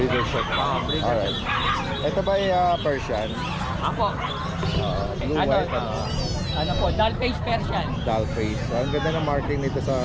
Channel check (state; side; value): identical; both; correlation 1.00